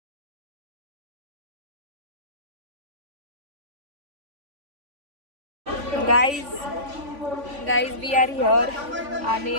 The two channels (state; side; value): late; left; 3.5 ms